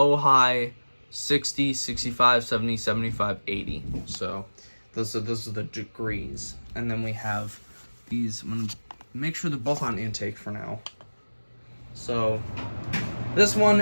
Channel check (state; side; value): inverted; both; correlation -1.00